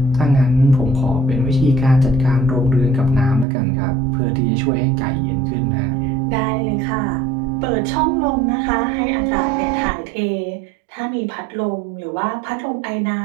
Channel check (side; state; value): left; drops out; at 3.5 s